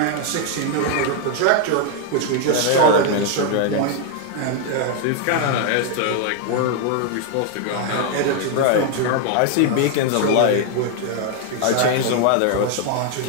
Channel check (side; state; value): both; different; correlation 0.00